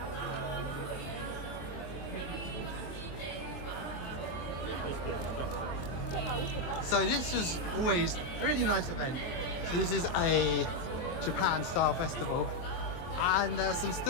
so this was always a really nice event. So this is a Japan style festival, and there's some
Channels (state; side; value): late; right; 23 ms